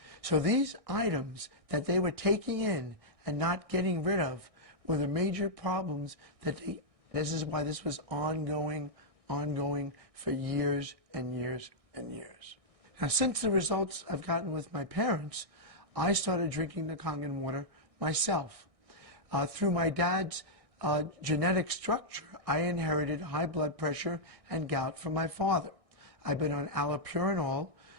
So these items that they were taking in and not getting rid of were the major problems that this is why this was ongoing for years and years and years. Now, since the results I've gotten with my parents, I started drinking the Kangen water myself. Through my dad's genetic structure, I inherited high blood pressure and gout from my father. I've been on allopurinol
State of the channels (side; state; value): left; late; 1.6 ms